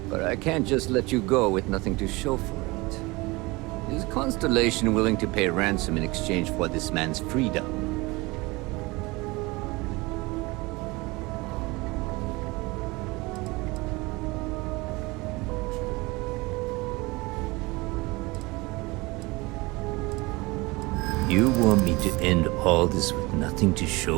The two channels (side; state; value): left; quieter; 23.5 dB